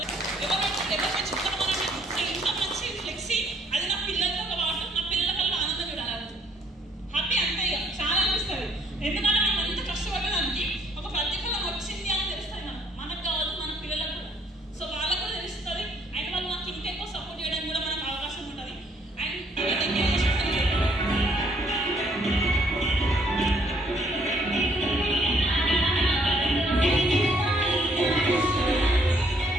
ఎవరు చెప్తాను మనమే. సో ఇంత మంచి ఫ్లెక్సీ అది నా పిల్లలతో పాటు నా పిల్లల వల్ల ఆనందం చూడాలి, హ్యాపీ అంతే ఇక చాలా అనిపిస్తుంది. ఎందుకంటే మనం అంత కష్టపడడానికి ఒక ప్రతిఫలం వచ్చింది అని తెలుస్తుంది మనకు కాదు మన పిల్లలకు కూడా. సో వాళ్ళకు కూడా తెలుస్తుంది అండ్ వాళ్ళు నాకు ఇంకెక్కువ సపోర్ట్ చేయడానికి కూడా మనకు అవకాశం ఉంటుంది. అండ్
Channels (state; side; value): normal; both; correlation 0.66